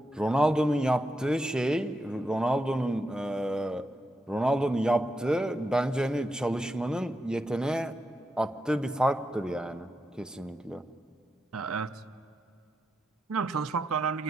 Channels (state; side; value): normal; both; correlation 0.86